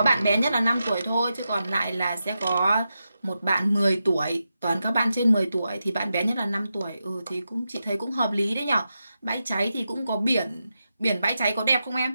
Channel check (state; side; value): inverted; both; correlation -0.89